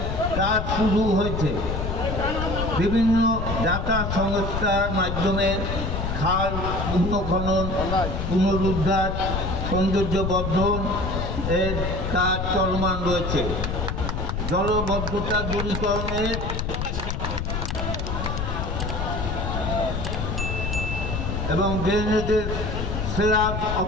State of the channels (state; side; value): noise; left; rumble, 2 dB below the sound